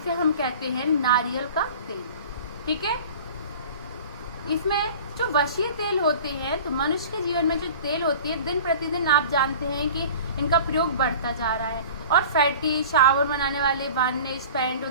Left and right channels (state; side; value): inverted; both; correlation -0.42